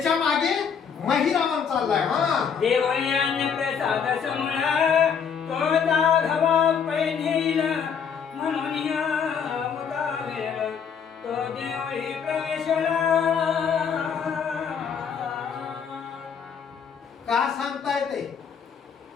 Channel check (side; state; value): right; quieter; 6.9 dB